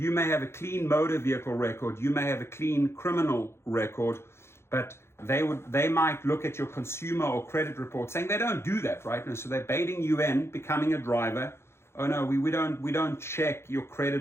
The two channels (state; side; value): late; right; 0.12 ms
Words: may have a clean motor vehicle record, you may have a clean criminal record, but they might look at your consumer or credit report saying they don't do that, right? And so they're baiting you in becoming a driver. Oh no, we don't check your